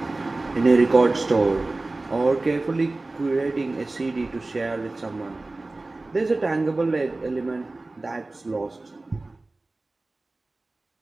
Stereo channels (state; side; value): quieter; left; 3.1 dB